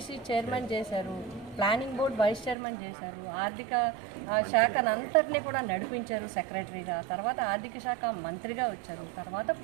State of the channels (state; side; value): drops out; left; at 2.6 s